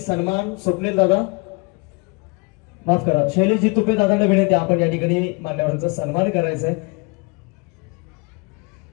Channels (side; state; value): right; quieter; 28.9 dB